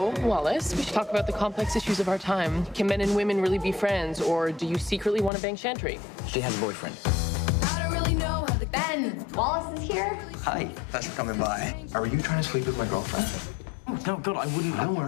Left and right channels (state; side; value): drops out; right; at 5.3 s